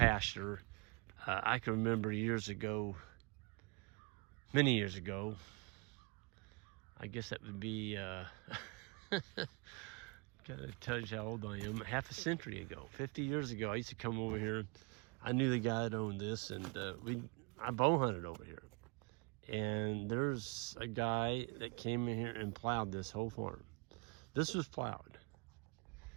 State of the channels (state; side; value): quieter; left; 30.7 dB